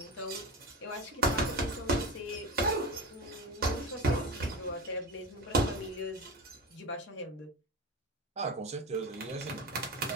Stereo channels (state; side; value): normal; both; correlation 0.27